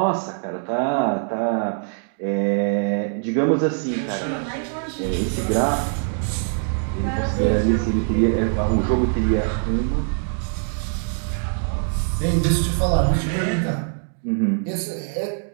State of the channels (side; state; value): left; silent; 59 dB below the other